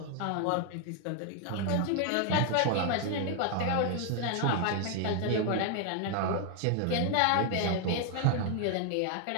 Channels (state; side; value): different; both; correlation 0.00